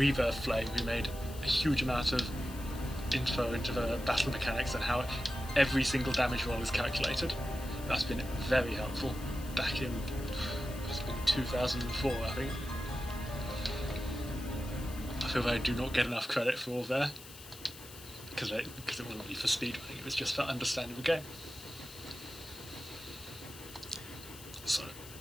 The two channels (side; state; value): left; noise; hiss, 16 dB below the sound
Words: Flame, who made a huge amount of info into the battle mechanics and how every single damage roll is calculated. That's been very helpful. Back in 2004, I think. I feel that I do not get enough credit for all there. Because it wasn't really for speedrunning, it was just for understanding the game. So.